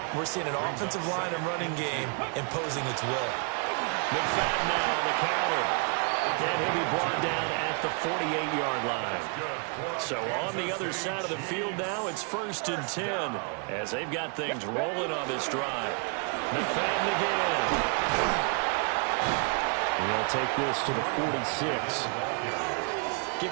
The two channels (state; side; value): quieter; left; 39.3 dB